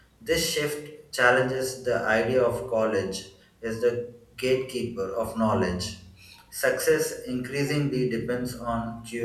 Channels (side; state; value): both; identical; correlation 1.00